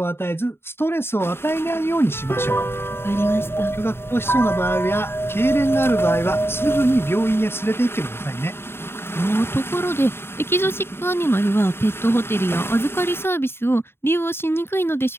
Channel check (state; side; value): late; right; 0.11 ms